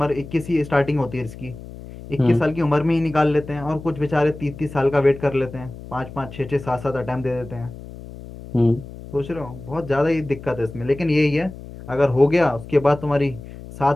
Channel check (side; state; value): left; noise; hum, 14 dB below the sound